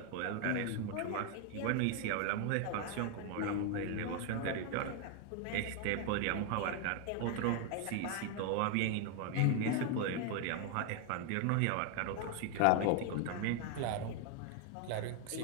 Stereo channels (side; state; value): both; different; correlation 0.01